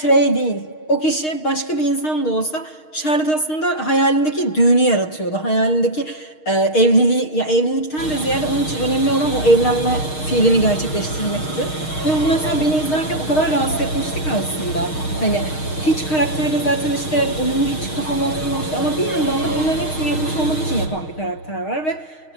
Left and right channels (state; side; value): late; right; 6.5 ms